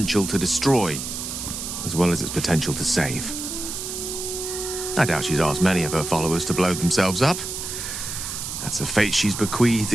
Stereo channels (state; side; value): noise; right; hiss, 6 dB below the sound